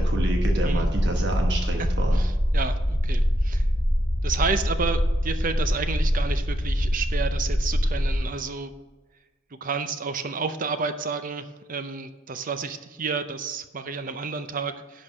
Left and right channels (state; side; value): normal; both; correlation 0.76